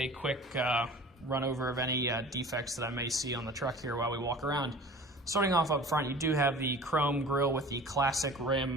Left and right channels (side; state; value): both; normal; correlation 0.42